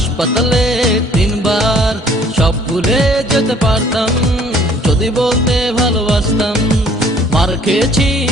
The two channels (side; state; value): both; normal; correlation 0.57